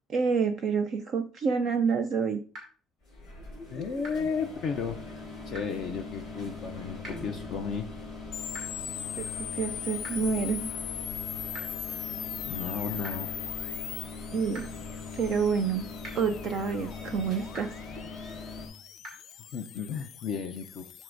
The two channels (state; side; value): normal; both; correlation 0.55